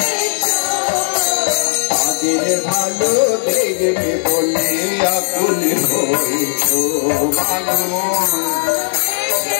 তাদের ভালো দেখবে বলে আকুল হয়েছ, মানুষ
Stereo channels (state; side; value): silent; right; digital silence